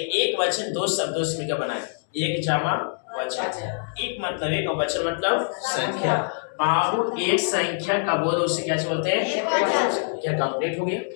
वचन दो शब्दों से मिलकर बना है, एक जमा वचन। एक मतलब एक और वचन मतलब संख्या। बाबू एक संख्या का बोध उसे क्या बोलते हैं? क्या कंप्लीट हो गया?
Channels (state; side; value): silent; right; digital silence